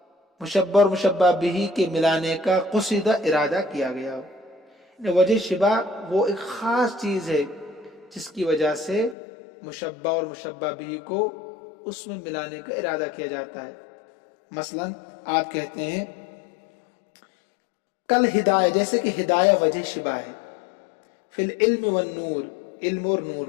مشبہ اور مشبہ بہ کے ملانے کا قصد ارادہ کیا گیا ہو۔ یعنی وجہ شبہ وہ ایک خاص چیز ہے جس کی وجہ سے مشبہ اور مشبہ بہ کو اس میں ملانے کا ارادہ کیا جاتا ہے۔ مثلا آپ کہتے ہیں کل ہدایہ، جیسے کہ ہدایہ وجہ شبہ ہے، فی العلم والنور، علم اور نور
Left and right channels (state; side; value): drops out; right; at 9.2 s